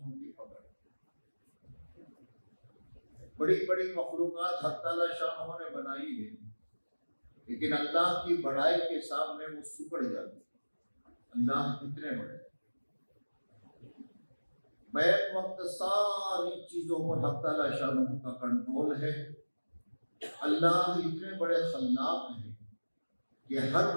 کی پکڑ. بڑی بڑی مخلوقات حق تعالیٰ شاہ نے بنائی ہے، لیکن اللہ کی بڑائی کے سامنے وہ سکڑ جاتی. اللہ کتنے بڑے. بیک وقت ساری چیزوں پر حق تعالیٰ شاہ کا کنٹرول ہے. اللہ اتنے بڑے خلاق ہیں کہ ہر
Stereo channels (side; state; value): both; inverted; correlation -1.00